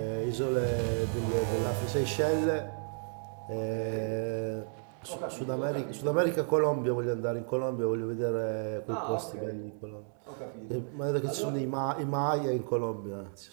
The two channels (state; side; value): silent; left; 56 dB below the other